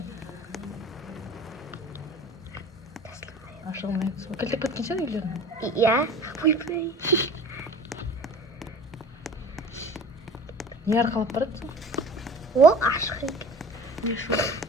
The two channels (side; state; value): both; normal; correlation 0.41